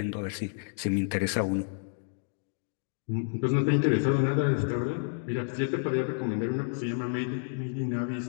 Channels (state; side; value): silent; right; digital silence